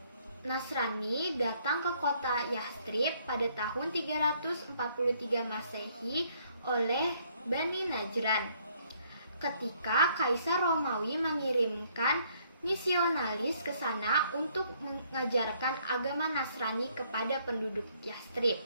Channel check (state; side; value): inverted; both; correlation -0.67